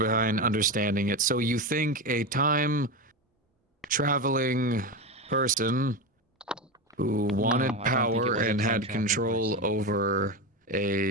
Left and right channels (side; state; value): both; normal; correlation 0.17